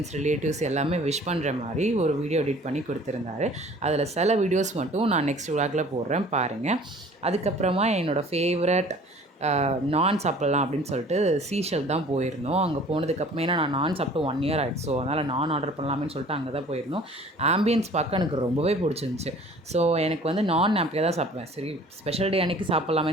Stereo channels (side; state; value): both; normal; correlation 0.49